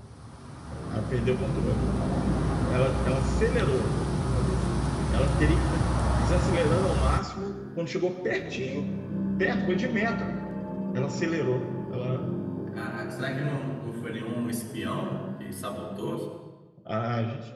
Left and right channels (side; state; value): both; identical; correlation 1.00